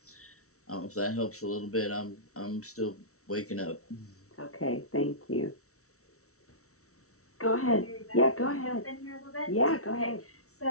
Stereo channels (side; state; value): right; late; 0.64 ms